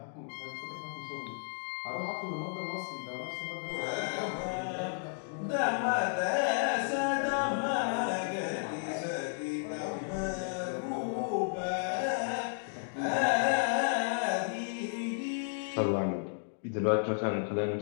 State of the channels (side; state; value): right; silent; digital silence